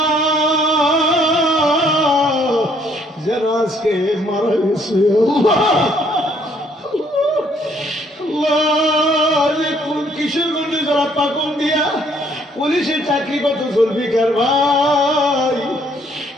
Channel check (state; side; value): normal; both; correlation 0.65